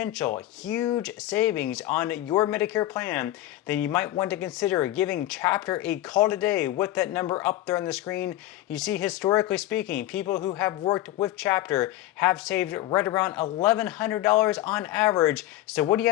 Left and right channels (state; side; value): quieter; right; 14.7 dB